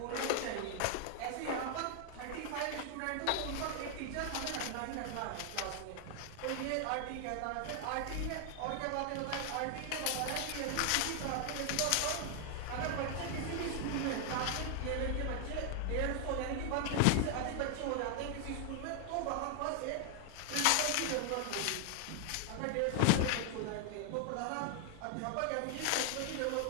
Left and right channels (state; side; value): different; both; correlation 0.00